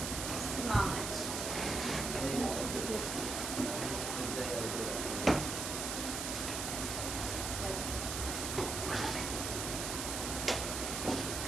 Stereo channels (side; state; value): right; noise; hiss, 3 dB below the sound